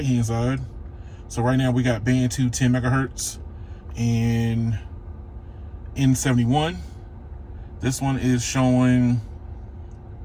side. So right now we got band 2, 10 megahertz, and N71. This one is showing,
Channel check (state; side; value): identical; both; correlation 1.00